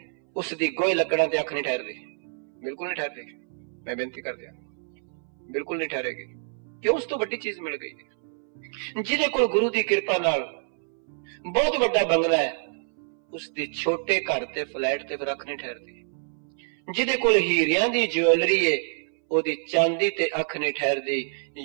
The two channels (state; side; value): silent; left; 61 dB below the other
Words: उसदी गोई लकड़ां ते अख नहीं ठहरदी, बिल्कुल नहीं ठहरदी। मैं बेनती कर दिया, बिल्कुल नहीं ठहरेगी। क्यों? उस तो बड़ी चीज मिल गई। जिदे कोल गुरु दी कृपा नाल बहुत बड़ा बंगला है, उसदी छोटे घर ते फ्लैट ते फिर अख नहीं ठहरदी। जिदे कोल हीरियां दी ज्वेलरी है, ओदी चांदी ते अख नहीं ठहरदी।